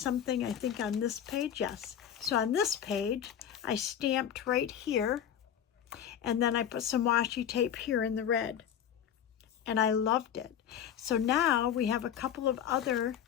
I think, on this page. Yes. So on this page, I stamped right here, and then I put some washi tape here in the red, and I loved it. So now we have a couple of other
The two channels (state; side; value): quieter; right; 9.4 dB